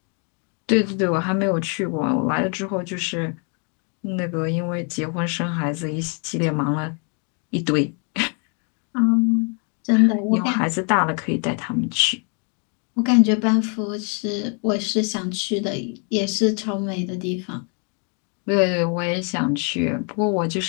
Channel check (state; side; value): quieter; right; 38.6 dB